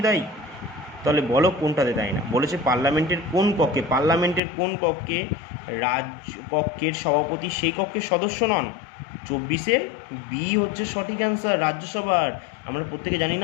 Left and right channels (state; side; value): drops out; right; at 4.4 s